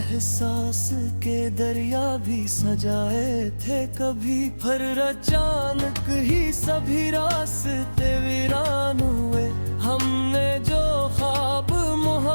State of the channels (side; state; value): both; inverted; correlation -1.00